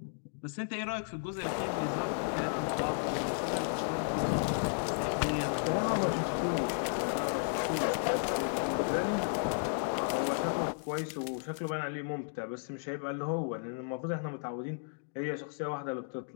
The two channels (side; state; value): right; silent; digital silence